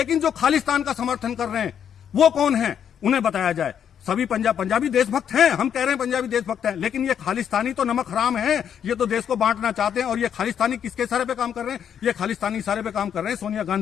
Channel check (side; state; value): right; quieter; 8.6 dB